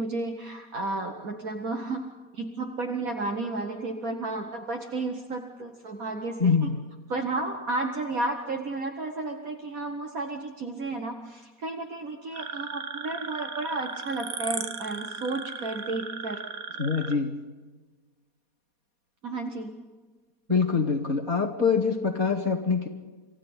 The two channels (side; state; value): left; late; 4.2 ms